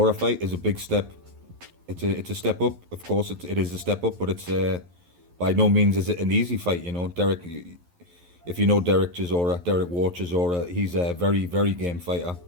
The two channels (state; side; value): late; left; 11 ms